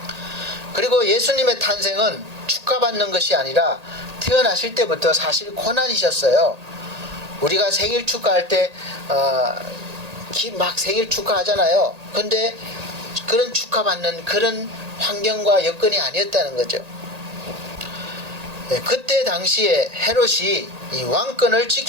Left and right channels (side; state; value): left; late; 1.8 ms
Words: 그리고 예수님의 탄생은 축하받는 것이 아니라 태어나실 때부터 사실 고난이셨어요. 우리가 생일 축하할 때 막 생일 축하하잖아요. 근데 그런 축하받는 그런 환경과 여건이 아니었다는 거죠. 그때 당시에 헤롯이 이 왕권을